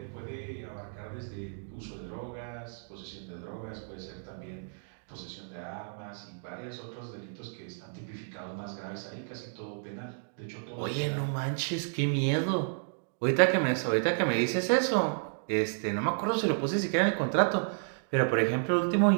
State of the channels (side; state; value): left; silent; digital silence